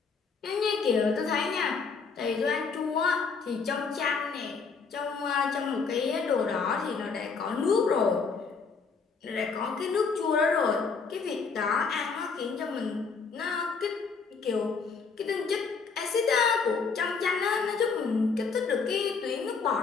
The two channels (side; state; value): right; quieter; 5.1 dB